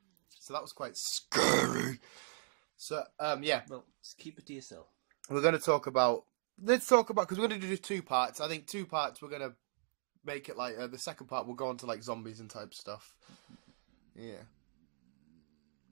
So that was quite scary. So, yeah. Well, just keep it to yourself. We're going to talk about... Let's talk about... Because we're going to do 2 parts. I think 2 parts we're going to make it like... the second part we'll go on to like zombies and type stuff. Yeah.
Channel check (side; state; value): left; silent; digital silence